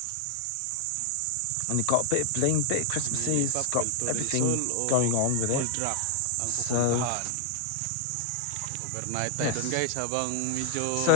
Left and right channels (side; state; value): both; different; correlation 0.00